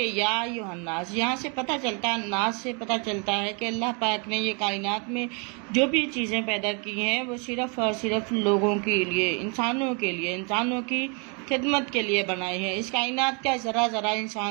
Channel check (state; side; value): quieter; left; 34.4 dB